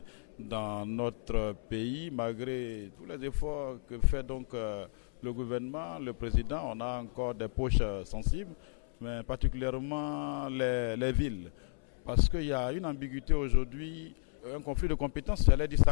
dans notre pays. Malgré tous les efforts que fait donc le gouvernement, le président, on a encore des poches sensibles, mais particulièrement les villes. Parce qu'il y a une ambiguïté aujourd'hui, un conflit de compétences, j'allais dire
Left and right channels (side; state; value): right; silent; 55 dB below the other